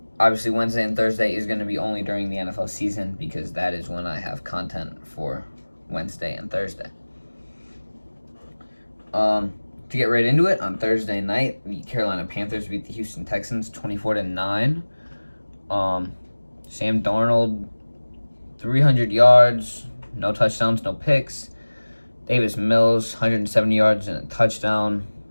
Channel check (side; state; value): both; inverted; correlation -1.00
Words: Obviously, Wednesday and Thursday is going to be only during the NFL season because that is when I have content for Wednesday and Thursday. To get right into it, on Thursday night, the Carolina Panthers beat the Houston Texans 24-9. Sam Darnold, 300 yards, no touchdowns, no picks. Davis Mills, 170 yards and a touchdown.